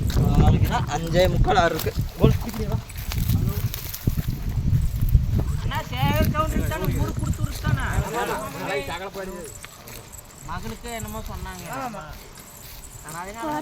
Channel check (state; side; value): identical; both; correlation 1.00